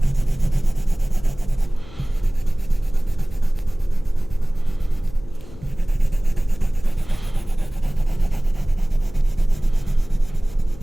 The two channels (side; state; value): left; noise; hum, 18 dB below the sound